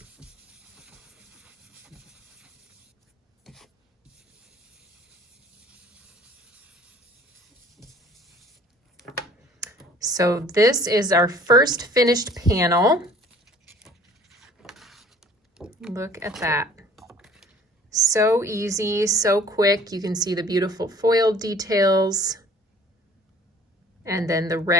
So this is our first finished panel. Look at that. So easy, so quick. You can see the beautiful foil details and then the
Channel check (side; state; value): both; normal; correlation 0.52